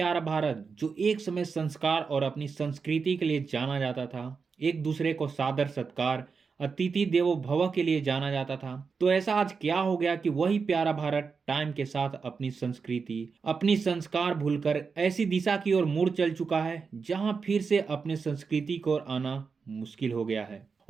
भारत, जो एक समय संस्कार और अपनी संस्कृति के लिए जाना जाता था, एक दूसरे को सादर सत्कार, अतिथि देवो भव के लिए जाना जाता था। तो ऐसा आज क्या हो गया कि वही प्यारा भारत टाइम के साथ अपनी संस्कृति, अपनी संस्कार भूलकर ऐसी दिशा की ओर मुड़ चल चुका है जहां फिर से अपने संस्कृति को आना मुश्किल हो गया है।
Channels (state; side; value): quieter; left; 5.2 dB